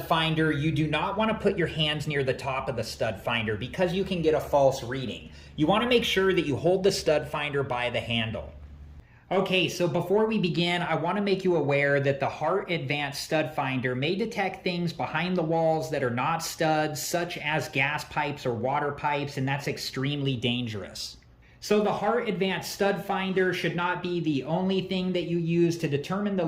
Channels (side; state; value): both; identical; correlation 1.00